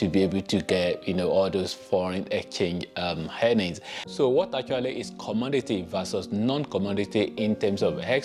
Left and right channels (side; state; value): both; identical; correlation 1.00